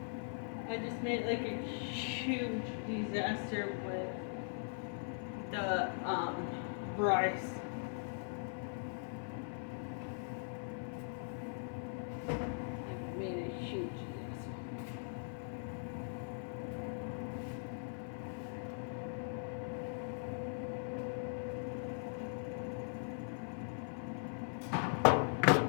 I just made like a huge disaster with the rice. I made a huge disaster.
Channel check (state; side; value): silent; right; 51 dB below the other